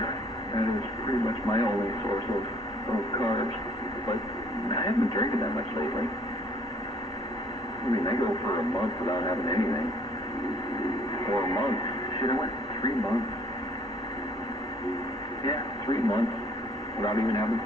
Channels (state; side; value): normal; both; correlation 0.59